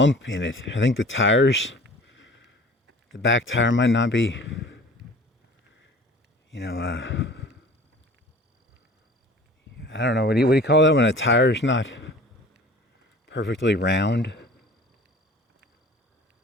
in it. I think the back tire might not be, I don't know, what do you call that when a tire's not perfectly round?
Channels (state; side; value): normal; both; correlation 0.45